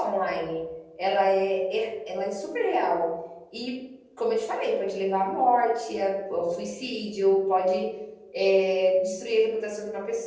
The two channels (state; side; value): identical; both; correlation 1.00